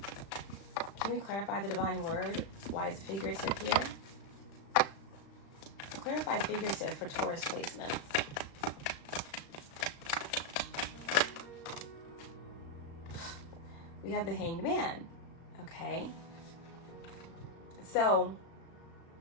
Can we clarify the divine word? Why it's figurative here? clarify figurative for Taurus placements? We have the Hanged Man. Okay. So,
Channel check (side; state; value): right; late; 36 ms